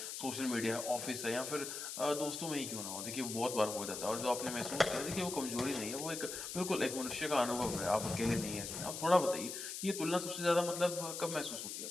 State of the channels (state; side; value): noise; left; hiss, 6 dB below the sound